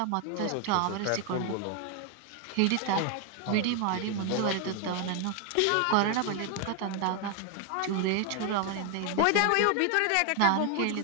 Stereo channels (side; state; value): both; different; correlation 0.00